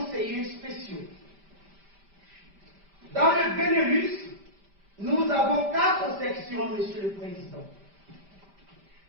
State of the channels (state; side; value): late; left; 5.1 ms